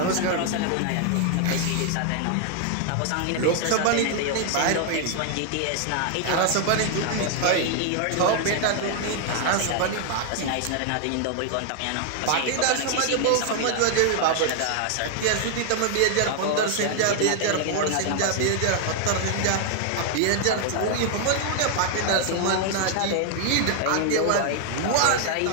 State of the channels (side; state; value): both; different; correlation 0.00